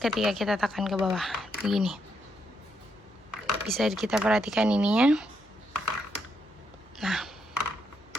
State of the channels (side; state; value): both; normal; correlation 0.78